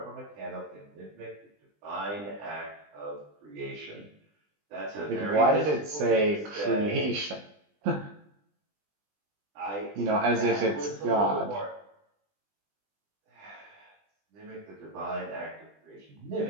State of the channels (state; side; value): late; left; 20 ms